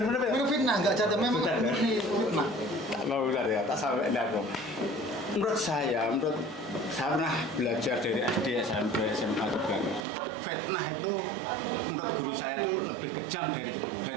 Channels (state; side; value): drops out; left; at 10.1 s